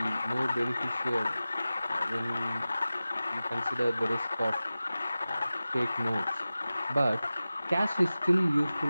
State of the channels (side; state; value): both; inverted; correlation -0.96